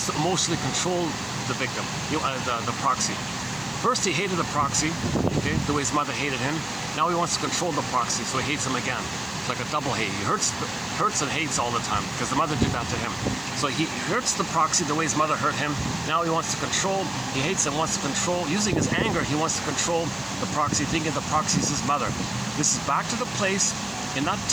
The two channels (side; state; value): left; noise; hiss, 25 dB below the sound